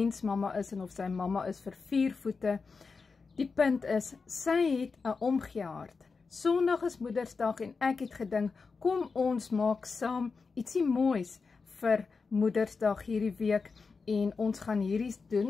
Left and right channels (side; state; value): right; quieter; 4.7 dB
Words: is en of sy mamma is vir 4 voete. Die punt is, sy het 'n omgee hart. Sondag is Moedersdag en ek het gedink, kom ons maak saam ietsie moois vir Moedersdag hierdie week en ons gaan hierdie